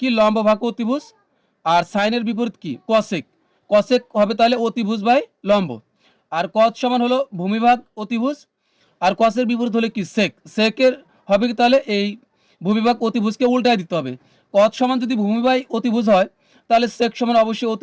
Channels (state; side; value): identical; both; correlation 1.00